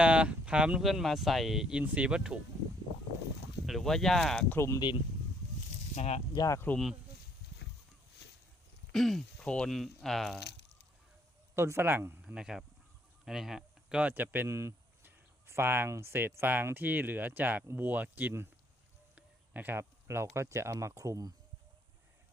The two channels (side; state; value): both; normal; correlation 0.66